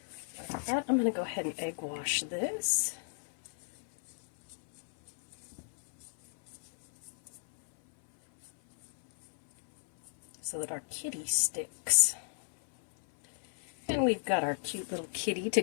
Like that. I'm going to go ahead and egg wash this. So that our kitty sticks. And we've got our cute little kitty to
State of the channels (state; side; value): silent; right; 55 dB below the other